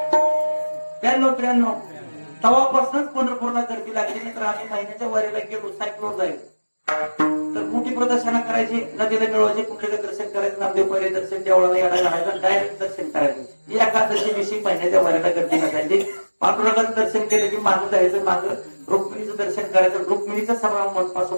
92-93 तेव्हापासूनच पंढरपूरला गर्दी लागली. नाही तर आम्ही महिन्याच्या वारीला गेलो सायकलवर जाईल तर मोठी प्रदर्शनं करायची. नदीला मिळवायचे कुठलेलं दर्शन करायचं. नामदेव पहिले दर्शन देवळाला यायला राहायचं डायरेक्ट दर्शन करायचं. एकादशी दिवशी महिन्याच्या वारीला गर्दी नसायची. पांडुरंगाचं दर्शन केलं की मागं जायचं. मागं रुक्मिणीचं दर्शन करायचं. रुक्मिणीचं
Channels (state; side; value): inverted; both; correlation -1.00